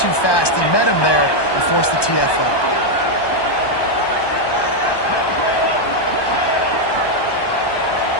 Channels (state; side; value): late; right; 1.2 ms